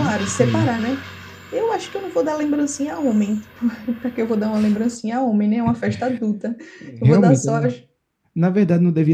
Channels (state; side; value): identical; both; correlation 1.00